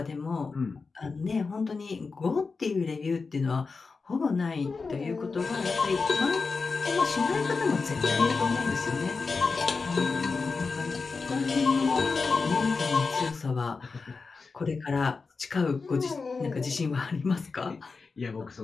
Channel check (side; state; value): right; quieter; 4.5 dB